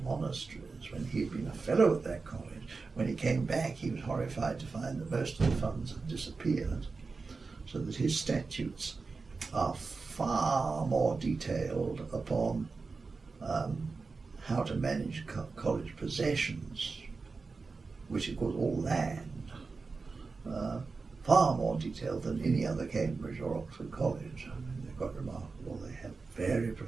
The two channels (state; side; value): quieter; left; 4.3 dB